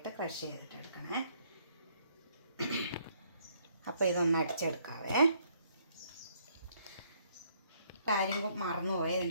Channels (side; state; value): both; inverted; correlation -0.67